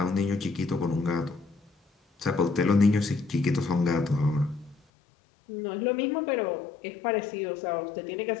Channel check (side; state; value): right; drops out; at 4.8 s